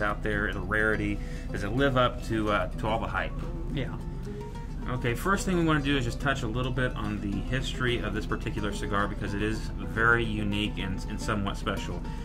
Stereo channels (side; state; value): both; identical; correlation 1.00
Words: there, the rarity? Does it live up to all the hype? Yeah. Okay, first thing we want to do is just touch a little bit on the history of this particular cigar because it is very unique and somewhat special.